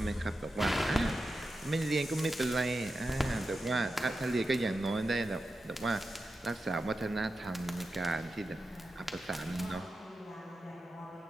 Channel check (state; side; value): normal; both; correlation 0.90